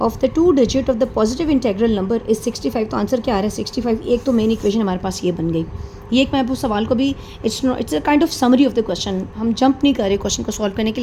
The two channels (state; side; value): identical; both; correlation 1.00